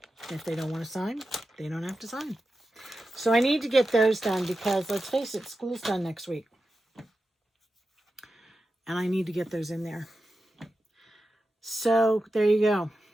If they don't want to sign, they don't have to sign. So I need to get those done because, let's face it, school's done next week. And I need to get those in there. So there you go.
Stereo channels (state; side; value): normal; both; correlation 0.91